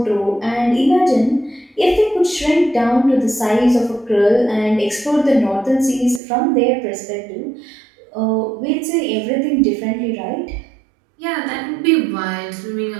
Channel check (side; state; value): left; drops out; at 6.2 s